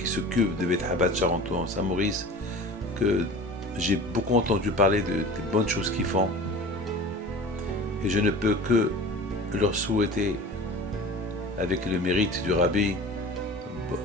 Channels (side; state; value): both; normal; correlation 0.38